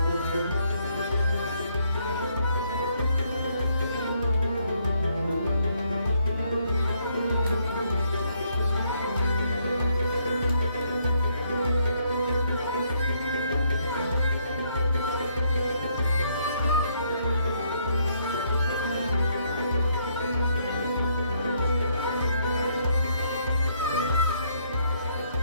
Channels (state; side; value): inverted; both; correlation -0.71